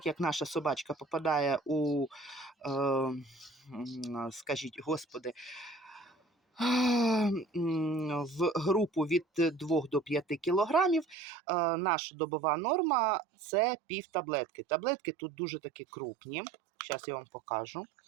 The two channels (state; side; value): drops out; left; at 11.2 s